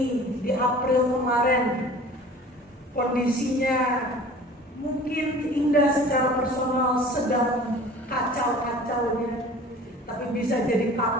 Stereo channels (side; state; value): both; normal; correlation 0.44